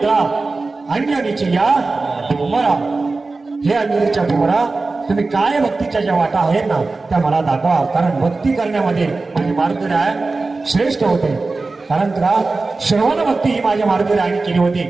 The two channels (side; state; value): left; quieter; 3.6 dB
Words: अंजनीची या कुमारा, हे अंजनीच्या कुमारा तुम्ही काय भक्तीच्या ज्या वाटा आहेत ना त्या मला दाखवा. कारण भक्ती करण्यामध्ये माझे मार्गदर्शक श्रेष्ठ होते. कारण का श्रवण भक्ती ही माझ्या मार्गदर्शकाने केली होती.